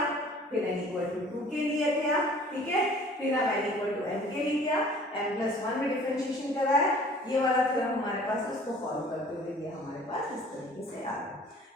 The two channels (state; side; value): normal; both; correlation 0.50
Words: फिर n इक्वल टू 2 के लिए किया। ठीक है, फिर हम n इक्वल टू m के लिए किया, m प्लस 1 में डिफरेंशिएशन करा है, ये वाला थ्योरम हमारे पास उसको फॉलो करते हुए ये हमारे पास इस तरीके से आ गया।